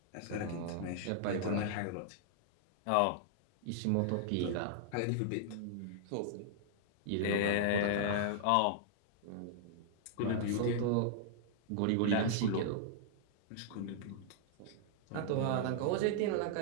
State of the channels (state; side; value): different; both; correlation -0.01